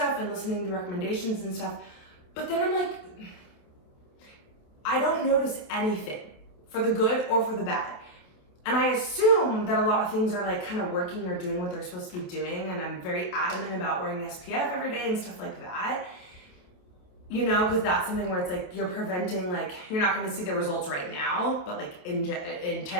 and listening to recommendations and stuff. But then I'm like, I don't notice anything for the good or for the bad. And I assume that a lot of things are like kind of working or doing what they're supposed to be doing. And I'm very adamant about wearing SPF every day and stuff like that. You know, because that's something where it's like you're preventing, like you're not going to see the results right now, but like in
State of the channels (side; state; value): right; late; 28 ms